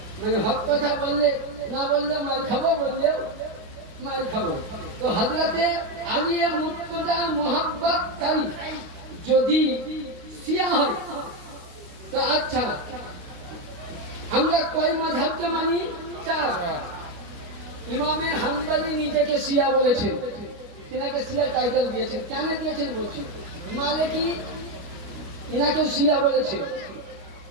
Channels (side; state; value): left; late; 29 ms